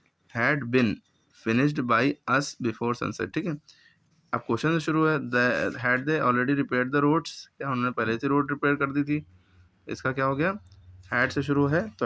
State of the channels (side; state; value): both; identical; correlation 1.00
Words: had been finished by us before sunset, ठीक है। अब क्वेश्चन से शुरू है, had they already repaired the roads, क्या उन्होंने पहले से रोड रिपेयर कर दी थी। इसका क्या हो गया, हैड से शुरू है तो